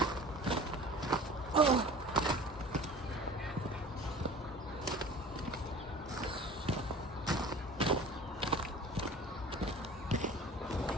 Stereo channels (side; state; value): both; normal; correlation 0.42